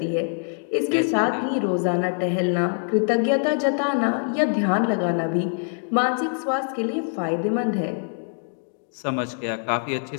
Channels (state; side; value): silent; right; 61 dB below the other